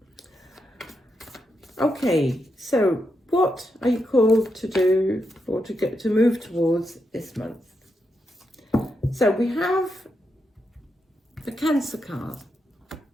Okay, so what are you called to do, or to move towards this month? So we have the Cancer card,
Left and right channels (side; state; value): both; normal; correlation 0.84